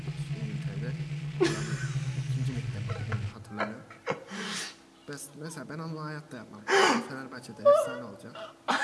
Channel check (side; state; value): both; identical; correlation 1.00